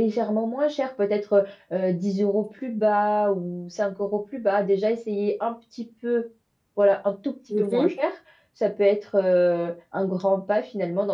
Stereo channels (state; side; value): identical; both; correlation 1.00